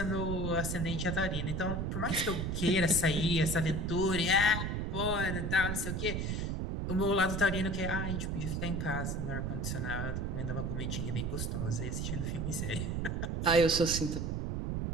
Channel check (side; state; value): right; noise; rumble, 1 dB below the sound